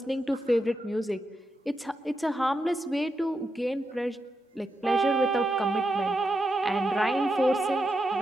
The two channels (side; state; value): both; normal; correlation 0.86